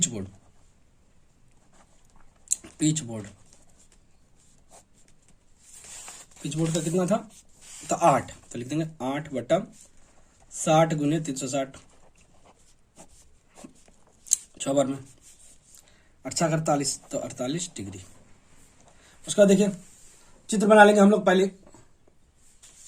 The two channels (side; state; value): both; identical; correlation 1.00